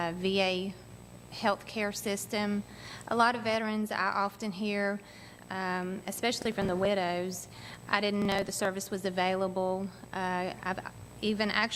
VA healthcare system. A lot of veterans I often hear, especially from the widows, I didn't know the service was available. I've even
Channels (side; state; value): both; identical; correlation 1.00